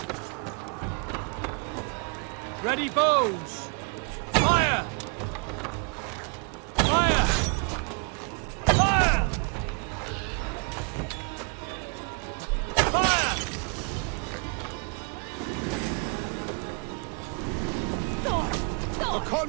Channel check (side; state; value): left; quieter; 36.9 dB